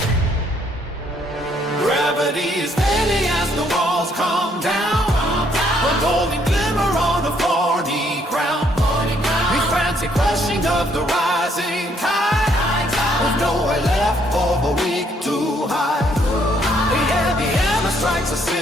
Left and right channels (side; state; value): both; normal; correlation 0.68